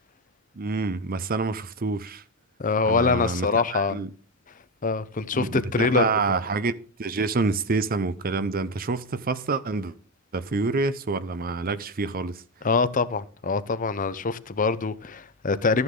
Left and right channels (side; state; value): both; normal; correlation 0.12